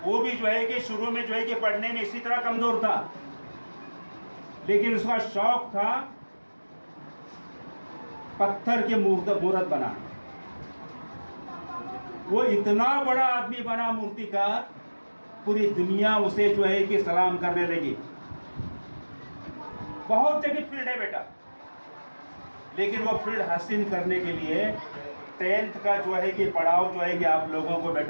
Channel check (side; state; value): both; inverted; correlation -1.00